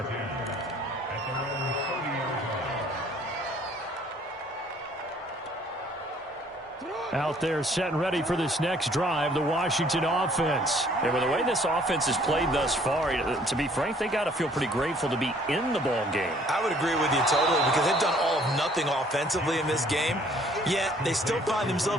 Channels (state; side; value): normal; both; correlation 0.59